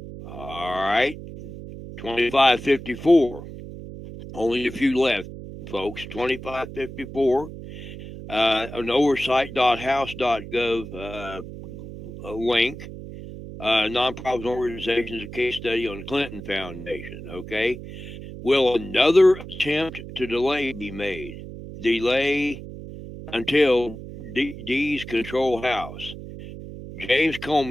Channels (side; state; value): right; noise; hum, 12 dB below the sound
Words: All right, 2554. Only a few left, folks. 2554. An oversight.house.gov link. Nonprofit organizations, a case study on the Clinton Foundation. Okay. Will another attempt to delay be made? Delay until D's control House. James